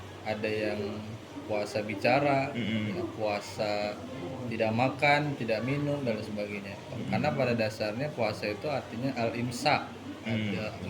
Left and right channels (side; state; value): both; identical; correlation 1.00